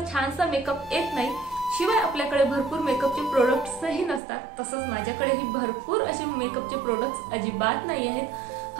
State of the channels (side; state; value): left; drops out; at 4.2 s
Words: छानसा मेकअप येत नाही, शिवाय आपल्याकडे भरपूर मेकअपचे प्रोडक्ट्सही नसतात। तसंच माझ्याकडेही भरपूर असे मेकअपचे प्रोडक्ट्स अजिबात नाही आहेत,